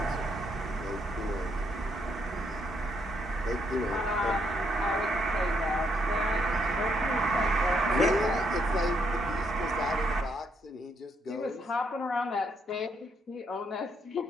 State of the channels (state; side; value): normal; both; correlation 0.74